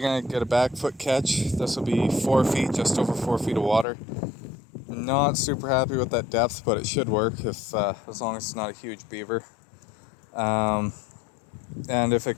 to get a back foot catch. This will be 4 feet, just over 4 feet of water. Not super happy with that depth, but it should work if as long as it's not a huge beaver. And if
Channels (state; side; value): drops out; right; at 3.9 s